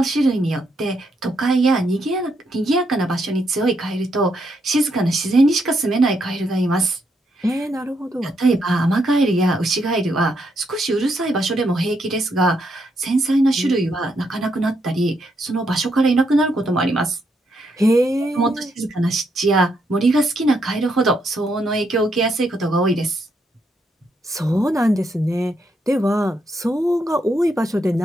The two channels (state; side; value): normal; both; correlation 0.78